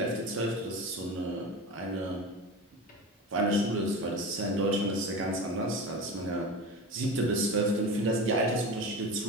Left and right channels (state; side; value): normal; both; correlation 0.29